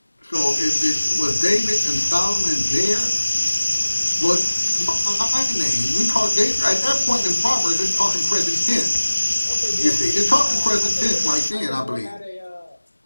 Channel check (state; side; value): inverted; both; correlation -1.00